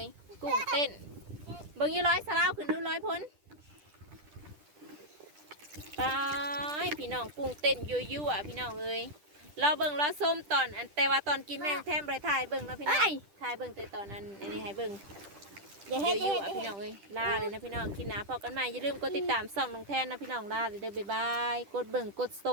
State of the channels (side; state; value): left; late; 10 ms